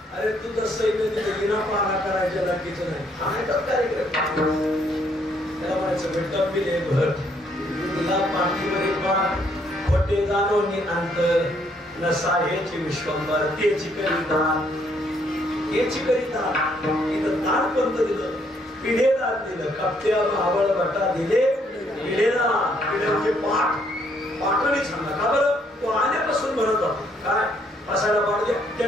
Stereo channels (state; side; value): normal; both; correlation 0.69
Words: अरे तू तर सैन्य तिथे विना पारा करायच्या लागीचं नाही. हा कार्यक्रम त्याला म्हणायचं भेटत बिले भर तुला पाठीमध्ये पाठ खोटे जाणून अंतर नसा हेची विश्वंभर तेची करिता हेची करिता इथं ताट पंत दिलं पिढेला दिलं कप्त्या आवळ बटा दिले पिढेला पिढे पाठ पाठवणी सांगा का बरं तो आल्यापासून म्हणत होता काय असायला पाड द्या त्या